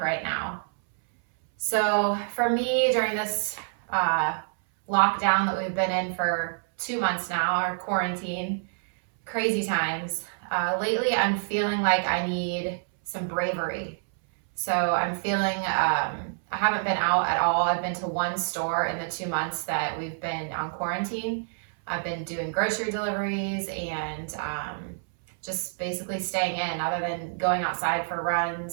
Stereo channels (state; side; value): silent; left; 60 dB below the other